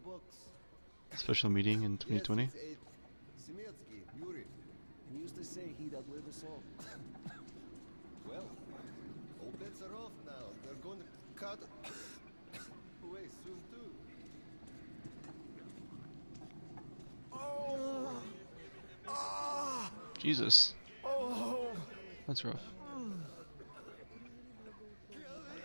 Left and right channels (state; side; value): inverted; both; correlation -1.00